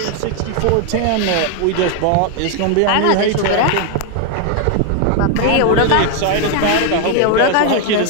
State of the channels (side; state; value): both; different; correlation 0.00